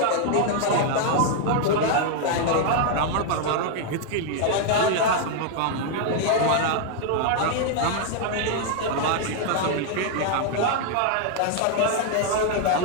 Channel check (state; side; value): different; both; correlation 0.00